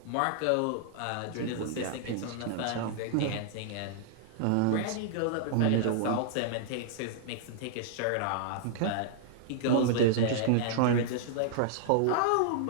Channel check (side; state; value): both; different; correlation -0.01